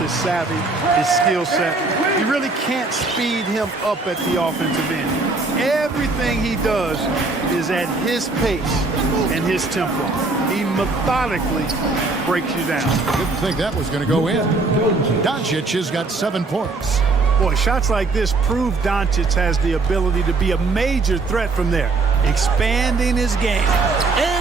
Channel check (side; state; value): left; quieter; 3.7 dB